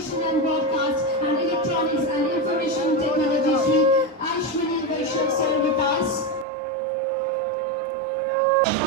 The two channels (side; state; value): left; drops out; at 6.5 s